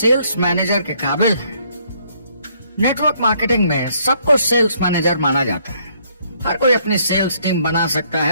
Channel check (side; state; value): both; inverted; correlation -0.67